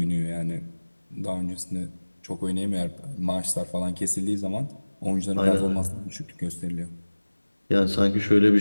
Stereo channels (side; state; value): both; inverted; correlation -1.00